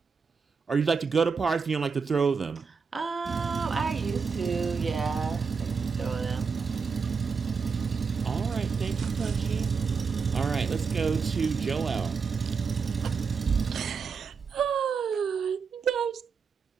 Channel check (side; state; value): left; quieter; 5.5 dB